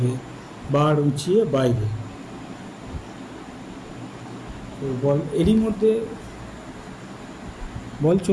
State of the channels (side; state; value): both; identical; correlation 1.00